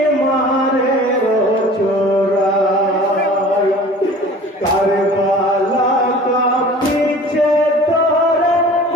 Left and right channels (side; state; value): both; normal; correlation 0.44